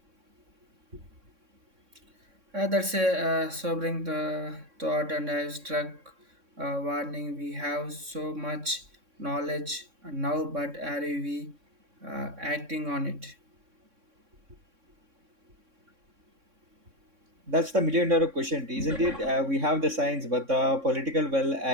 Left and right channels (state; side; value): late; left; 3.6 ms